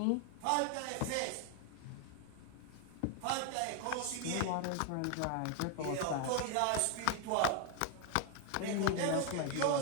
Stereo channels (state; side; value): different; both; correlation 0.00